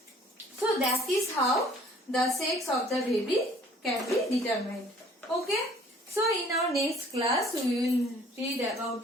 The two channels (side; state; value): both; normal; correlation 0.55